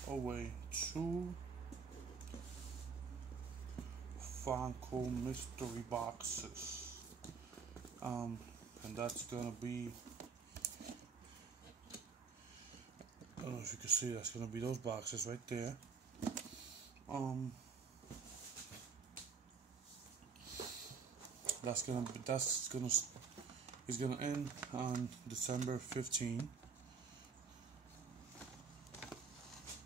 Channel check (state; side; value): quieter; left; 5.5 dB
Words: away 2 Funko mystery boxes. And that's gonna be, I don't know if you can see, that's gonna be those boxes right there. It's gonna end on December 15.